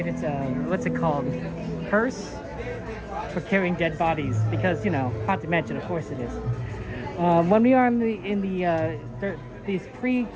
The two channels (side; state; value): both; identical; correlation 1.00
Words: It's a, what's it called? Hearse for carrying dead bodies. Because, you know, Haunted Mansion, of course it is. When we are in these